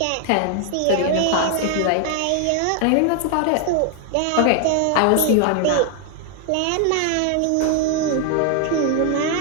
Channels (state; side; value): different; both; correlation 0.00